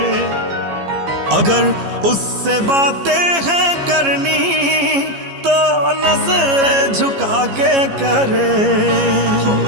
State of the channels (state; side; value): late; left; 15 ms